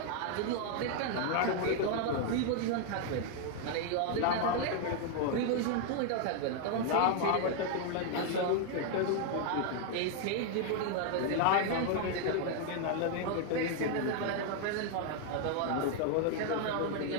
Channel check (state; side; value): different; both; correlation 0.00